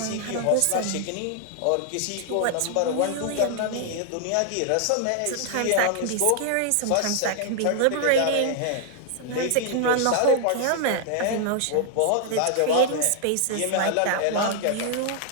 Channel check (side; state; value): both; different; correlation 0.00